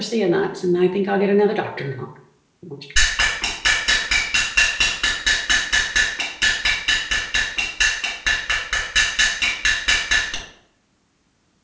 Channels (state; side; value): identical; both; correlation 1.00